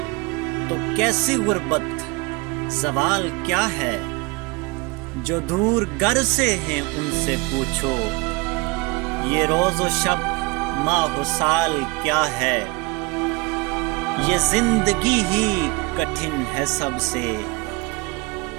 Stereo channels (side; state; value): left; quieter; 26.0 dB